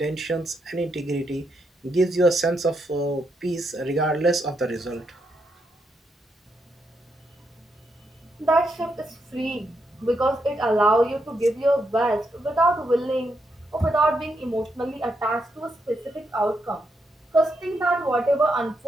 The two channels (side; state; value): both; normal; correlation 0.81